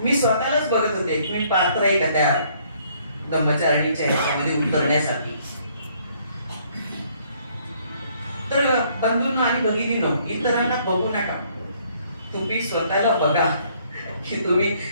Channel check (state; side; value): inverted; both; correlation -0.64